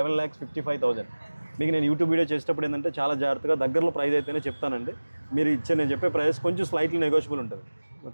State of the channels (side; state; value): both; inverted; correlation -1.00